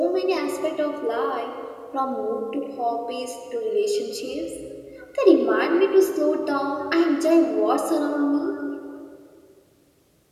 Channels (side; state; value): both; identical; correlation 1.00